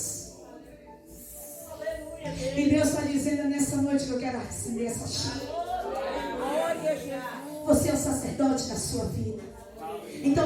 E Deus está dizendo nessa noite que eu quero acender essa chama. Você é o sacerdote da sua vida.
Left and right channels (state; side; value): identical; both; correlation 1.00